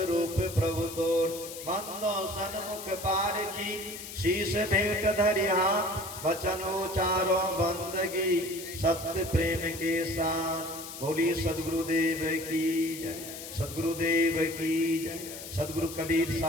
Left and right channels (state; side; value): noise; left; hiss, 11 dB below the sound